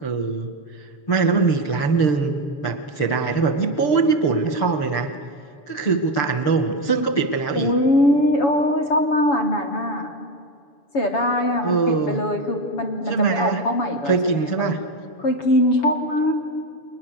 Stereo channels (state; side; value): late; right; 6.8 ms